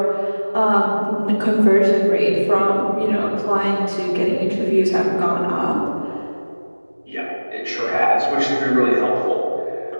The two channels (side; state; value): both; inverted; correlation -1.00